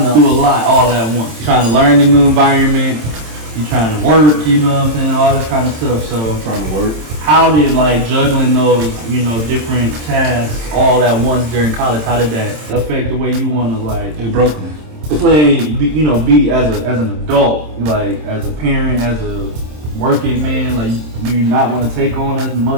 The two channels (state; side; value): late; left; 27 ms